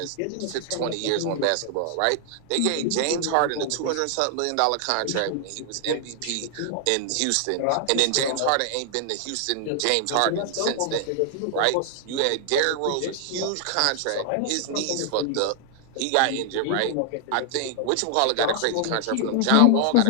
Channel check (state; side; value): different; both; correlation 0.00